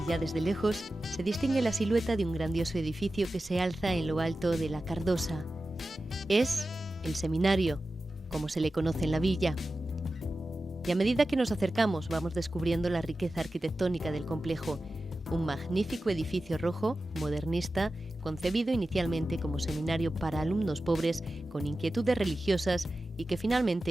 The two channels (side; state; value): both; normal; correlation 0.94